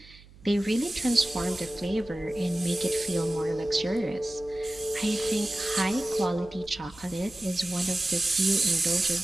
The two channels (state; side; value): noise; right; hum, 23 dB below the sound